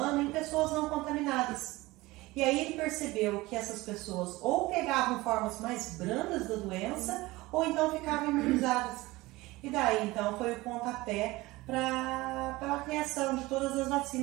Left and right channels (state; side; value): quieter; left; 20.2 dB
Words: em pessoas não contaminadas. E aí ele percebeu que essas pessoas ou pegavam formas mais brandas da doença ou então ficavam imunizadas. E daí então foi o pontapé para a criação de todas as